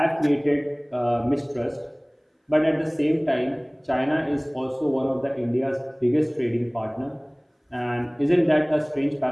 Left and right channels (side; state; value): both; identical; correlation 1.00